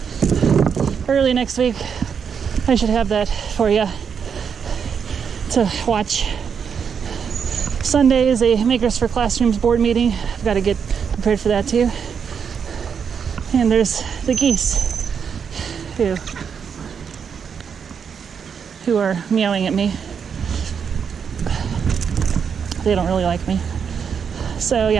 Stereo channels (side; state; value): left; quieter; 6.8 dB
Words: early next week, I should have that for you to watch. Sunday is a Makers for Classrooms board meeting. I've got to get prepared for that too. And there's the geese who are meowing at me. They don't really like me. So